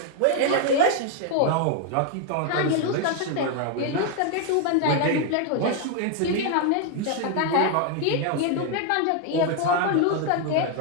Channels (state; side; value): different; both; correlation 0.00